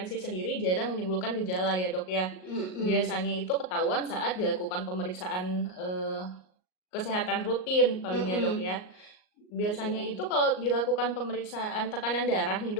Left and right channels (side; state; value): right; late; 38 ms